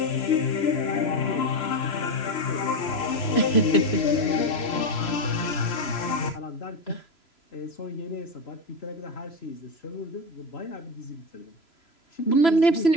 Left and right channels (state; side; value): late; right; 3.0 ms